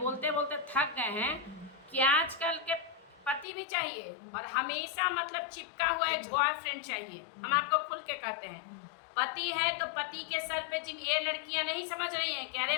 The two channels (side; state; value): right; drops out; at 3.5 s